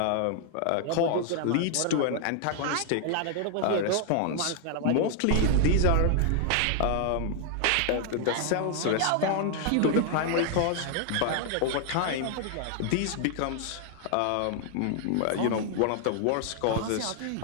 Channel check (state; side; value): different; both; correlation 0.00